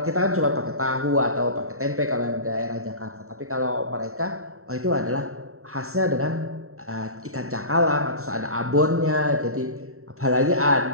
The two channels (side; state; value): left; late; 0.63 ms